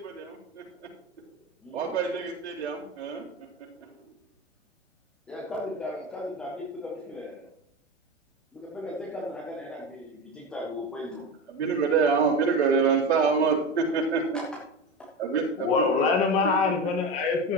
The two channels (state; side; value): normal; both; correlation 0.23